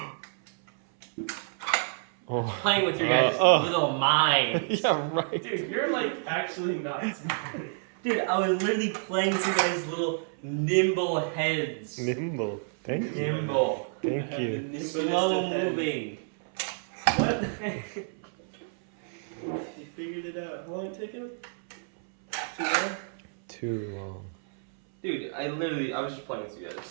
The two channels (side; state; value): left; silent; 58 dB below the other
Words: Oh. Playing with your guys' little minds. Yeah, right. Dude, you're like actually not smart. Dude, I was literally playing with your guys' little nimble heads. Nimble. Thank you. Nimble. Thank you. Slow moving. What? You figured it out. How long did it take him? Too long? Too long. Dude, I was just playing with you